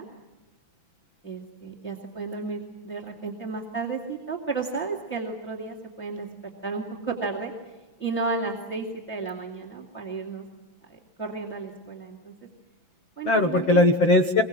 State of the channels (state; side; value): late; right; 5.9 ms